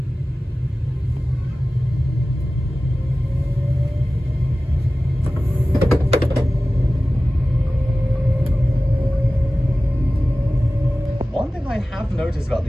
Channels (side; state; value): both; normal; correlation 0.96